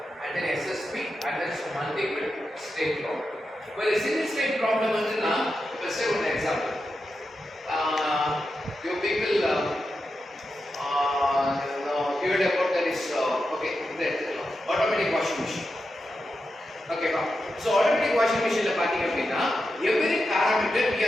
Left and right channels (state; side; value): normal; both; correlation 0.89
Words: and then SSP and then some multiple state problem. Well, a single state problem is now, let's say one example. You people heard about that is okay, automatic washing machine. Okay, so automatic washing machine la pathina appadina every parameter we